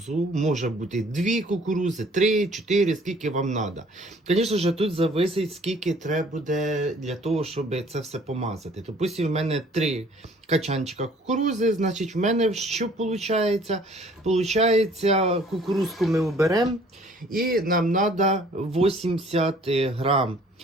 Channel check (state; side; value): normal; both; correlation 0.56